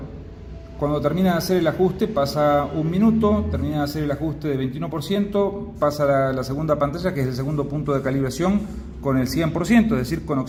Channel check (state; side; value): identical; both; correlation 1.00